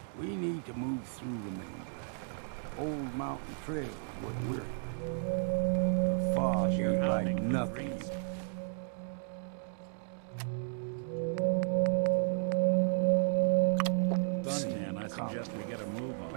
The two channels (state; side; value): silent; left; digital silence